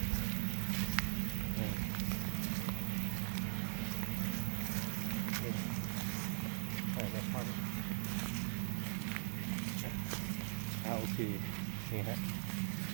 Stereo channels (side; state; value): left; silent; 51 dB below the other